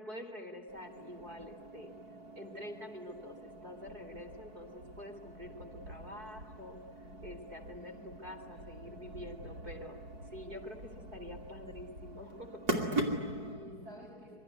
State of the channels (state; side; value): late; left; 4.6 ms